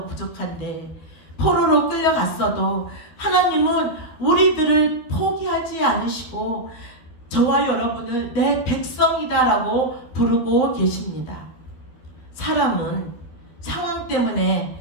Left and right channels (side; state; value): right; late; 13 ms